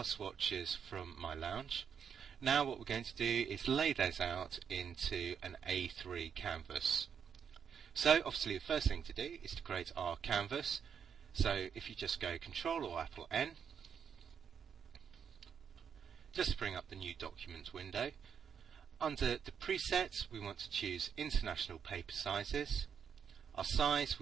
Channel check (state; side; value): quieter; left; 7.4 dB